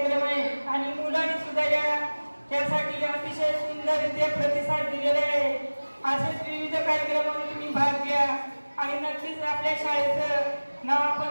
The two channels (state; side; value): inverted; both; correlation -1.00